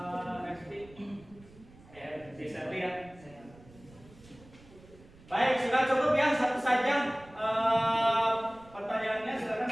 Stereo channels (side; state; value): right; noise; rumble, 23 dB below the sound